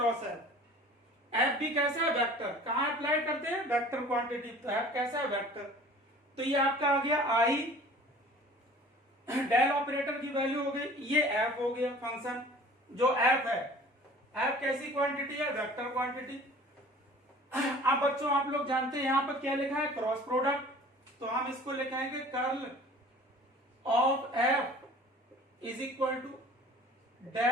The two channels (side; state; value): both; normal; correlation 0.46